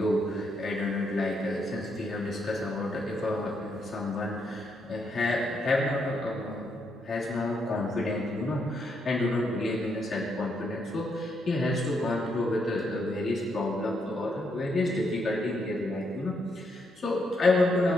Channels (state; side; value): normal; both; correlation 0.77